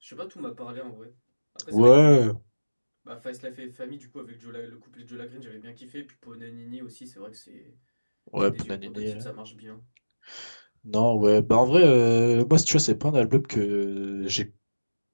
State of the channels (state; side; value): inverted; both; correlation -1.00